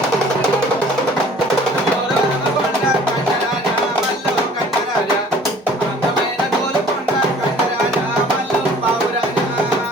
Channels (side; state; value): both; normal; correlation 0.52